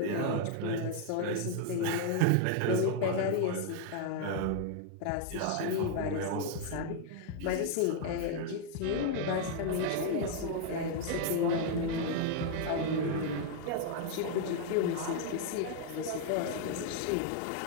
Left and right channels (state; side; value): different; both; correlation 0.00